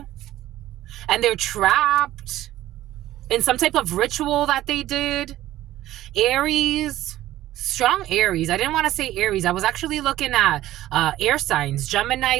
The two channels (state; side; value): quieter; left; 14.5 dB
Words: and they're trapped in some type of ritual that they did. Aries, strong Aries. I didn't want to say Aries. I was actually looking at air signs.